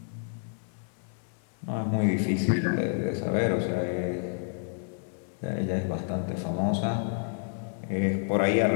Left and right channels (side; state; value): right; silent; 58 dB below the other